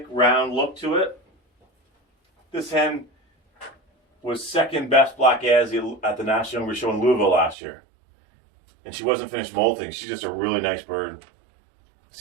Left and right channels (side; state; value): left; drops out; at 7.6 s